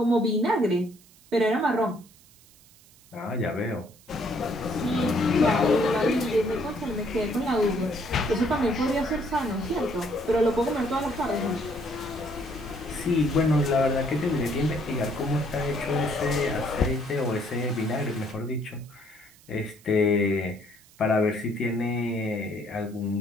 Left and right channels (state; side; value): noise; right; hiss, 26 dB below the sound